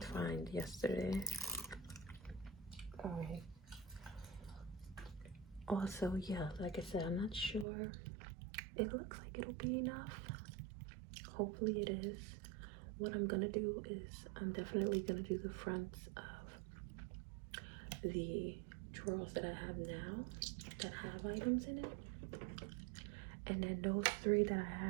fine yesterday. All right. Also, yeah, like I said, I'm not sure. It looks like it'll be enough. Hopefully it is. What I'm gonna do is I'm definitely gonna do the fronts of the drawers that I have now that have items in it. And then those 3 that I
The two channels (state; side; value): drops out; left; at 7.7 s